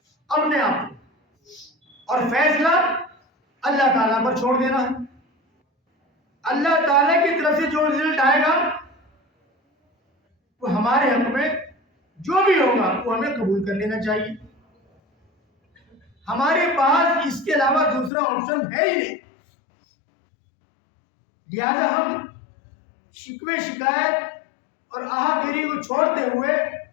اپنے آپ کو، اور فیصلہ اللہ تعالیٰ پر چھوڑ دینا ہے. اللہ تعالیٰ کی طرف سے جو رزلٹ آئے گا وہ ہمارے حق میں جو بھی ہوگا وہ ہمیں قبول کر لینا چاہیے. ہمارے پاس اس کے علاوہ دوسرا آپشن ہے ہی نہیں. لہذا ہم شکوے شکایت اور آہا گیری کو چھوڑتے ہوئے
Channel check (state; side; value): drops out; right; at 18.1 s